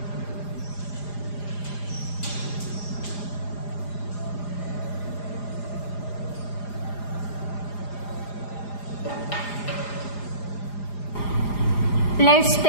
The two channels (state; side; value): late; right; 4.9 ms